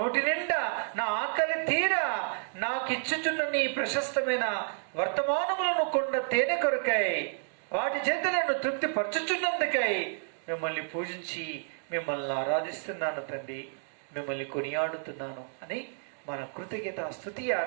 నిండా నా ఆకలి తీరా నాకు ఇచ్చుచున్న నీ ప్రశస్తమైన వర్తమానములను కొండ తేనె కొరకై వాటి చేత నన్ను తృప్తి పరచుచున్నందుకై మిమ్మల్ని పూజించి మిమ్మల్ని ఆరాధిస్తున్నాను తండ్రి, మిమ్మల్ని కొనియాడుతున్నాను అని మన కృతజ్ఞత స్తుతి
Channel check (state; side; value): silent; left; digital silence